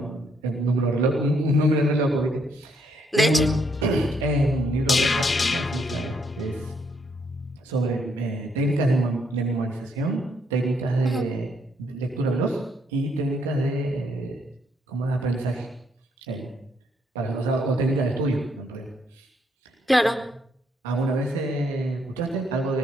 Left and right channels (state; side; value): normal; both; correlation 0.72